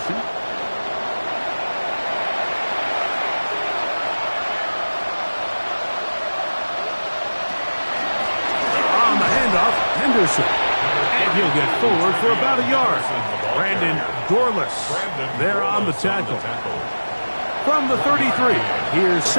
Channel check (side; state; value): both; inverted; correlation -1.00